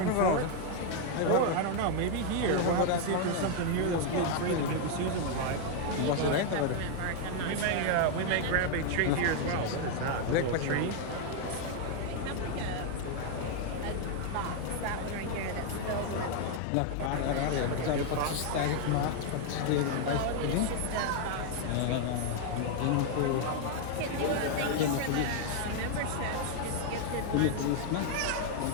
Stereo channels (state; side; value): different; both; correlation 0.00